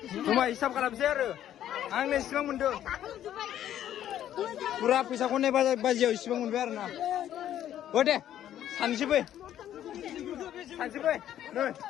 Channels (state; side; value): quieter; right; 11.3 dB